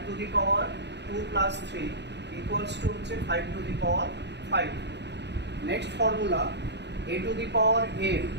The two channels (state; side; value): late; left; 0.50 ms